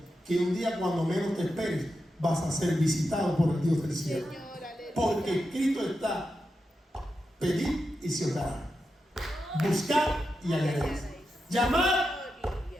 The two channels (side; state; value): both; normal; correlation 0.88